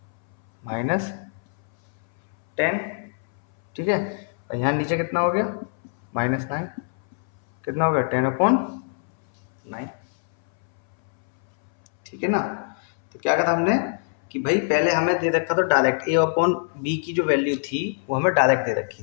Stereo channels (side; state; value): right; silent; 62 dB below the other